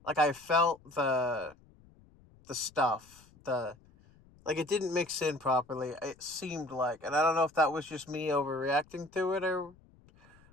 I felt the stuff like it didn't mix in properly. It seemed like, and I don't know if that was just me overreacting to it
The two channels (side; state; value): left; noise; rumble, 27 dB below the sound